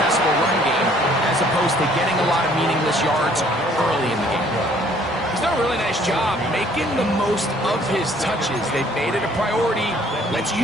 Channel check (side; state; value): both; normal; correlation 0.59